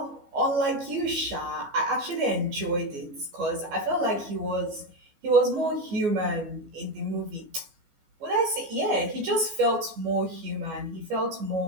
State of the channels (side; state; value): left; late; 14 ms